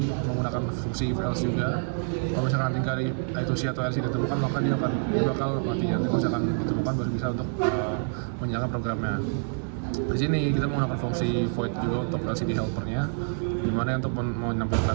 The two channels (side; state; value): left; silent; 59 dB below the other